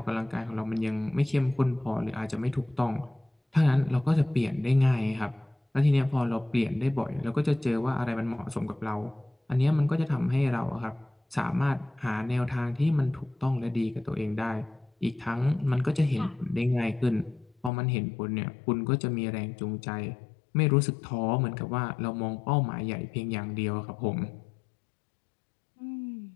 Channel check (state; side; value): drops out; right; at 17.7 s